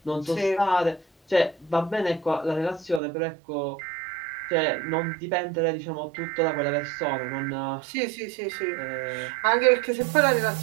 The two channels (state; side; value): drops out; left; at 3.0 s